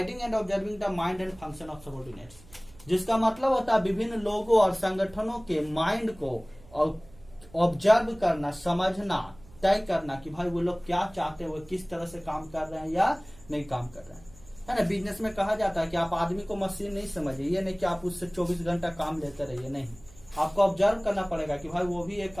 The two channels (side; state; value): right; noise; hum, 23 dB below the sound